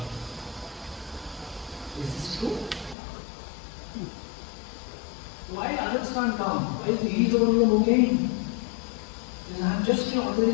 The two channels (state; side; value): drops out; right; at 3.0 s